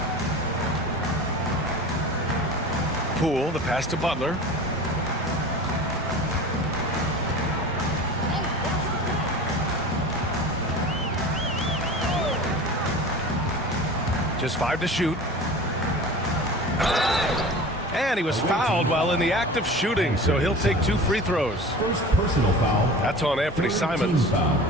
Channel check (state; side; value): normal; both; correlation 0.37